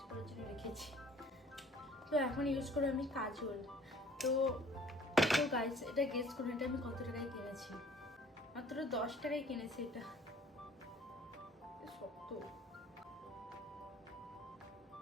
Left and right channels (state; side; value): normal; both; correlation 0.53